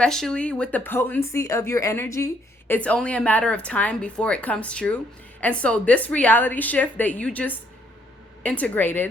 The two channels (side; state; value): both; normal; correlation 0.68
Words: with the potency of your energy, it's only a matter of time before it comes true. And so this reality shift that you just